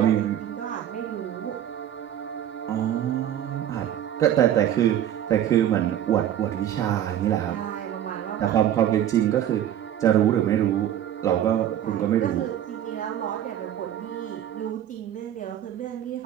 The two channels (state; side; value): quieter; left; 10.9 dB